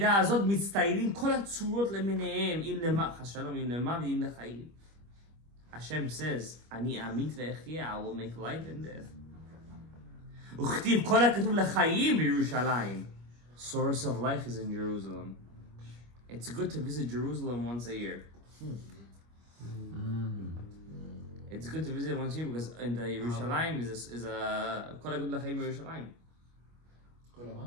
הזאת מצטיירים כל הצורות למיניהם, אם למח השלום, אם למח ואם לחיים. Hashem says, אני אמית ואחיה, I will make life and death. וכתיב כל הכתוב לחיים בירושלים. Source of life is in Jerusalem. It's good to visit Jerusalem once a year. It's good to visit once a year because in the Yerushalayim is a כל הכתוב לחיים בירושלים.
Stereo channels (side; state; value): left; late; 25 ms